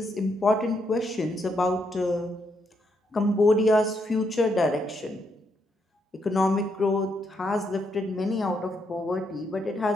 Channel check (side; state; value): both; normal; correlation 0.78